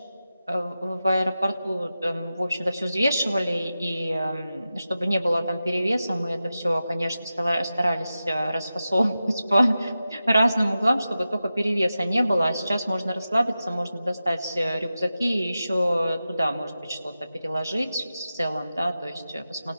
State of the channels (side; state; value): both; inverted; correlation -0.92